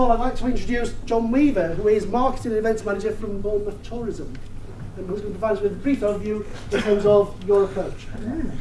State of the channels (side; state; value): both; identical; correlation 1.00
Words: I'd like to introduce Jon Weaver, who is Marketing and Events Manager from Bournemouth Tourism, and who's going to provide us with a brief overview in terms of your approach.